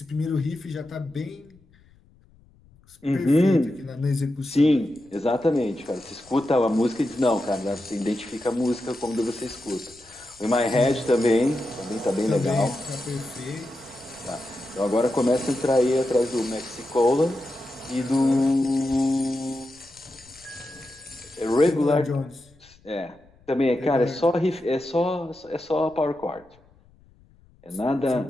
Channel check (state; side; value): noise; left; rumble, 29 dB below the sound